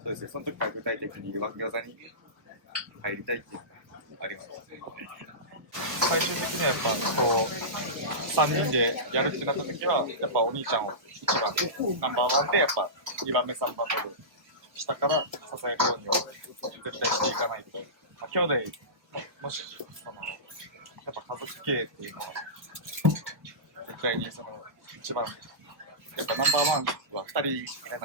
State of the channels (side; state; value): left; late; 1.2 ms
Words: そうですね、その時から具体的にワン餃子に入りたいっていうのがあります。最終的にはやっぱこう3人でやるってなった時はやっぱお兄ちゃんを1番ナンバーワンでやっぱ2番目3番目で下から支えるようには絶対していかないと、まあ、兄弟もしそのやっぱ家族経営っていうのは絶対にその一番やっぱナンバーワンは2人いら